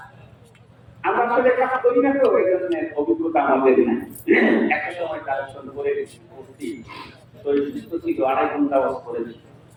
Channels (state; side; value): identical; both; correlation 1.00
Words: আমরা আসলে কাজ করি না তো এই জন্য অভিজ্ঞতা আমাদের না একটা সময় কালেকশন করে করছি তো সুস্থ ছিল 2.5 ঘন্টা ওয়াজ করেছি